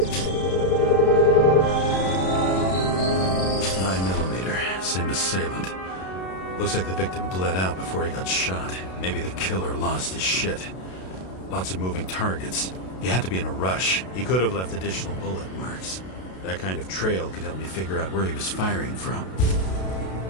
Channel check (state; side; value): late; right; 32 ms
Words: 9mm, same assailant. Looks like the victim bled out before he got shot. Maybe the killer lost his shit. Lots of moving targets. He had to be in a rush. He could have left additional bullet marks. That kind of trail could help me figure out where he was firing from.